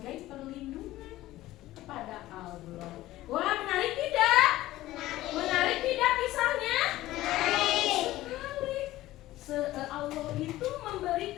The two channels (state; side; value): quieter; right; 16.0 dB